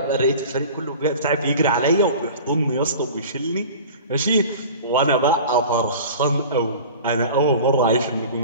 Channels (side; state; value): both; inverted; correlation -0.39